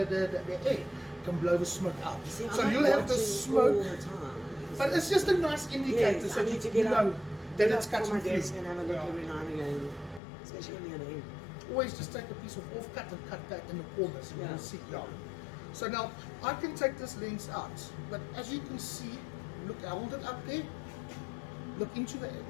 air can blow the smoke out. See, so you'll have the smoke, but it's just a nice indicator so you know that it's cutting through. And have a look every now and again, especially when you're in. Always just take a piece of off-cut and cut that in the corners and you'll see. So now, I can take this lens out, but as you can see, look, I hold it up there, look into the,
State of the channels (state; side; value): drops out; right; at 10.2 s